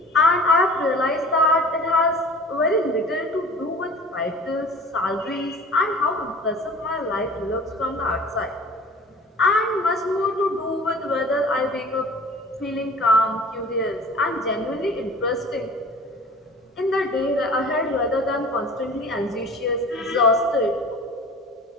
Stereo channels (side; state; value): both; normal; correlation 0.44